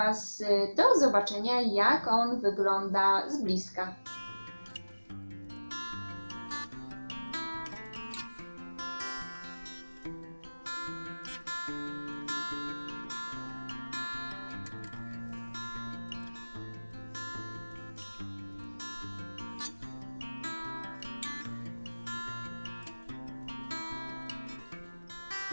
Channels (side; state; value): both; inverted; correlation -1.00